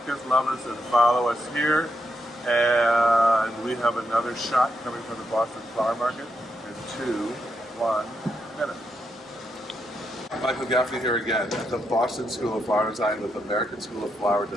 us, love us, and follow us here. And we have another shot coming from the Boston Flower Market in 1 minute. Michael Gaffney here again at the Boston School of Flower Design with American School of Flower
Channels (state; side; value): normal; both; correlation 0.82